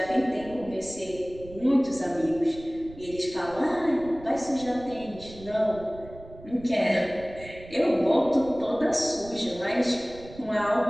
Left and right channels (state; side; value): noise; right; rumble, 18 dB below the sound